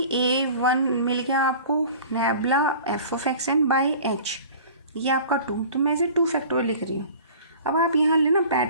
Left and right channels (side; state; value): both; inverted; correlation -0.44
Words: a1 मिल गया आपको nabla F of x N by H, ये आपका 2, तो मैं इसे 2 फैक्टोरियल लिख रही हूँ। अब आप यहाँ लेना